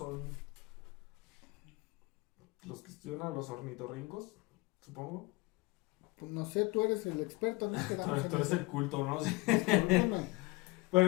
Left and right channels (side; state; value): right; quieter; 23.4 dB